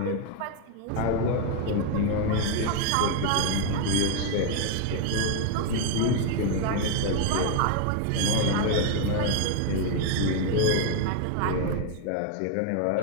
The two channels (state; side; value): different; both; correlation 0.00